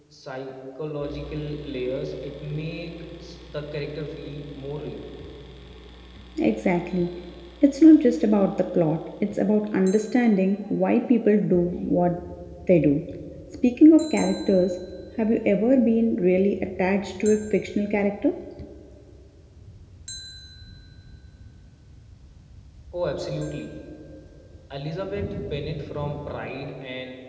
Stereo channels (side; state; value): both; identical; correlation 1.00